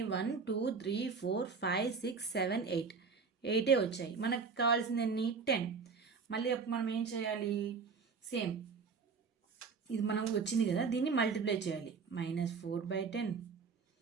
1 2 3 4 5 6 7 8. 8 వచ్చాయి. మనకు కావాల్సింది ఎన్ని? 10. మళ్ళీ మనం ఏం చేయాలి? సేమ్ ఇది మనం వచ్చింది కదా, దీన్ని మల్టిప్లై చేయాలి.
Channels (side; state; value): left; quieter; 5.2 dB